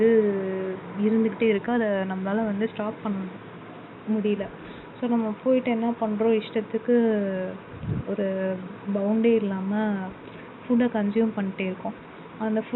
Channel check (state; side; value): identical; both; correlation 1.00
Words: இருந்துக்கிட்டே இருக்குது. அதை நம்மளால் ஸ்டாப் பண்ண முடியல. ஸோ நம்ம போயிட்டு என்ன பண்ணுறோம், இஷ்டத்துக்கு ஒரு பவுண்டே இல்லாமல் ஃபுட்டை கன்சியூம் பண்ணிட்டே இருக்கோம். அந்த